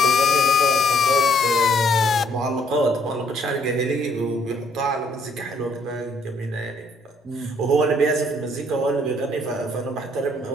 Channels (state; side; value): normal; both; correlation 0.65